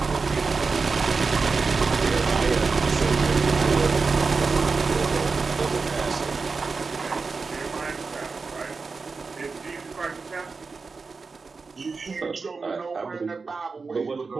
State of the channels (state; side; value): quieter; left; 4.5 dB